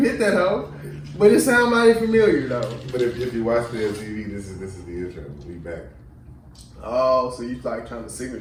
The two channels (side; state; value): both; identical; correlation 1.00